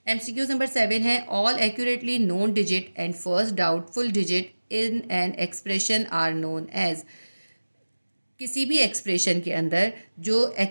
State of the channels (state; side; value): inverted; both; correlation -1.00